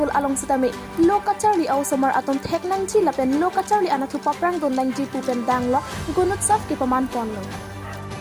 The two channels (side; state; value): both; identical; correlation 1.00